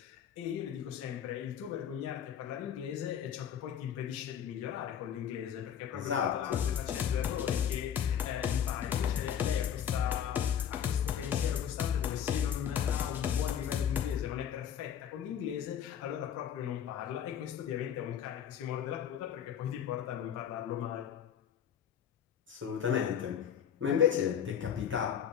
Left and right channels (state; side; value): quieter; right; 8.9 dB